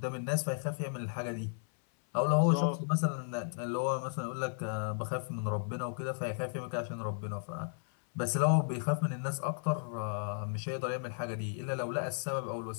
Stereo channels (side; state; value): right; silent; 55 dB below the other